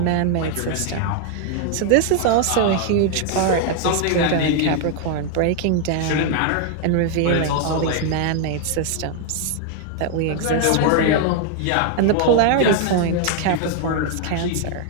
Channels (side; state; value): both; different; correlation 0.00